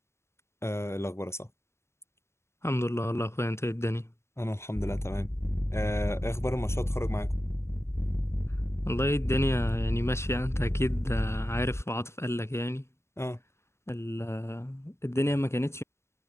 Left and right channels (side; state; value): right; late; 0.13 ms